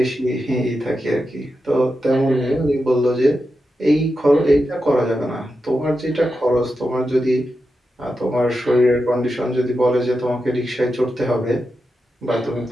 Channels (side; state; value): both; normal; correlation 0.89